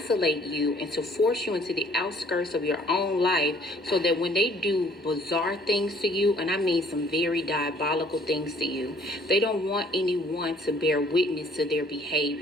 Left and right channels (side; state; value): both; normal; correlation 0.59